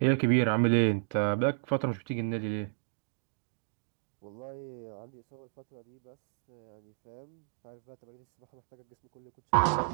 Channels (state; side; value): silent; left; digital silence